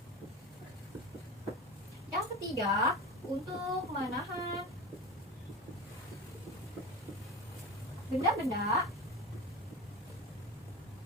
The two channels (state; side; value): normal; both; correlation 0.28